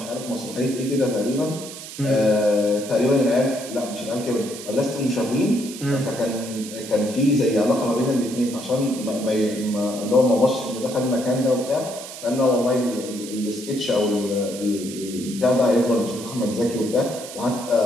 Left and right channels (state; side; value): noise; right; hiss, 12 dB below the sound